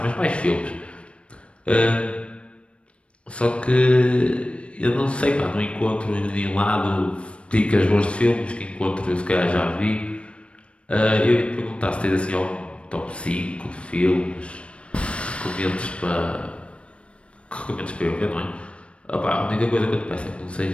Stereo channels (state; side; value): late; right; 0.060 ms